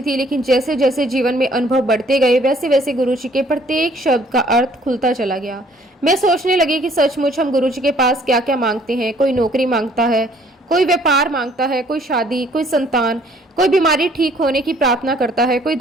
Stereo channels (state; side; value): normal; both; correlation 0.60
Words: थी, लेकिन जैसे जैसे जीवन में अनुभव बढ़ते गए वैसे वैसे गुरुजी के प्रत्येक शब्द का अर्थ खुलता चला गया। मैं सोचने लगी कि सचमुच हम गुरुजी के पास क्या क्या मांगते हैं। कोई नौकरी मांगता है, कोई व्यापार मांगता है, कोई शादी, कोई संतान, कोई बीमारी ठीक होने की प्रार्थना करता है, कोई